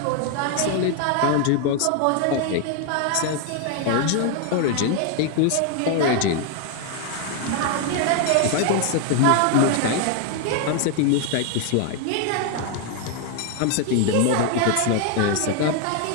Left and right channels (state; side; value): different; both; correlation 0.01